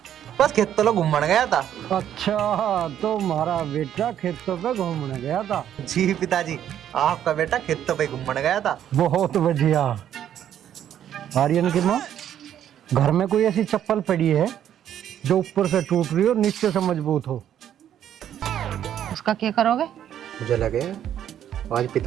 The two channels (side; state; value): left; quieter; 10.4 dB